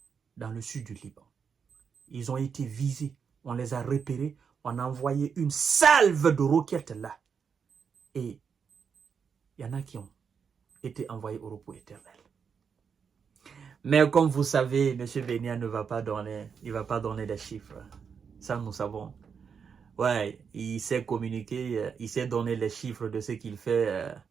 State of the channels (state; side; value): quieter; left; 6.4 dB